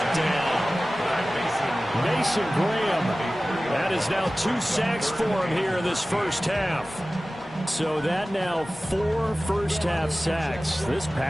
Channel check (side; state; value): both; normal; correlation 0.97